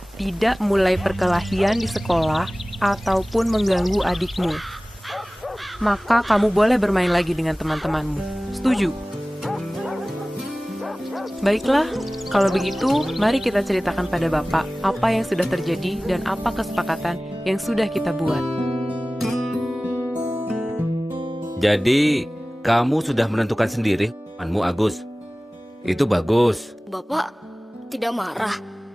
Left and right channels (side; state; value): both; normal; correlation 0.98